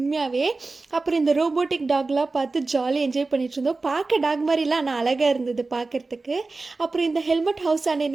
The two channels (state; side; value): quieter; left; 3.6 dB